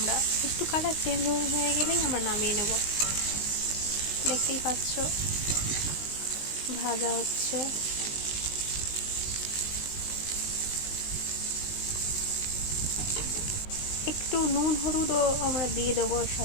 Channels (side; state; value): right; late; 19 ms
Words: একটু কালার চেঞ্জ হয়ে গেলেই আমরা নামিয়ে নেব। দেখতেই পাচ্ছ ভাজা হচ্ছে। একটু নুন হলুদও আমরা দিয়ে দেবো এর